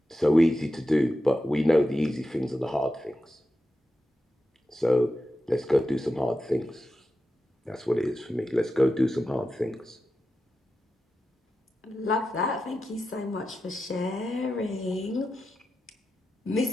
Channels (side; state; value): both; normal; correlation 0.90